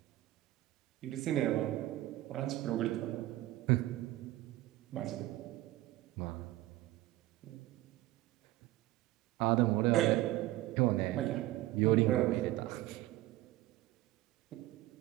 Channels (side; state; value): left; quieter; 16.6 dB